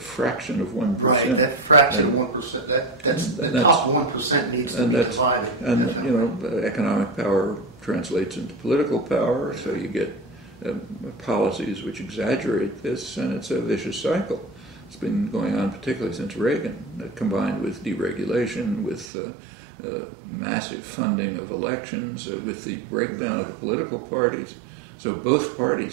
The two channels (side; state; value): left; drops out; at 19.1 s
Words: of 1%. Right, that fraction of 1%, that's the top 1% needs to be divided. And, definitely. Economic power translates into political power, so you get policies which exaggerate this, and it's a vicious cycle. It's been going on particularly since Reagan, combined with deregulation, with massive funding of elections, with the breakdown of the political parties. So both